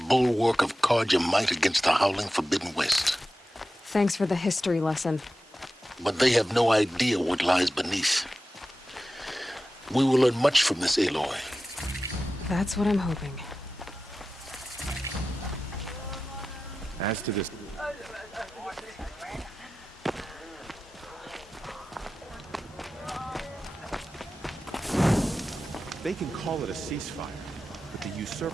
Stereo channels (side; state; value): both; normal; correlation 0.94